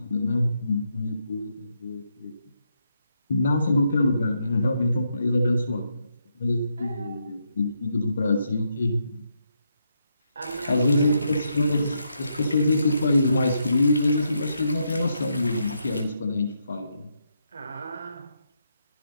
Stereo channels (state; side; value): inverted; both; correlation -0.80